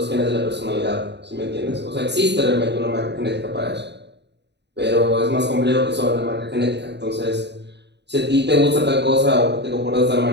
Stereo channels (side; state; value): left; late; 0.50 ms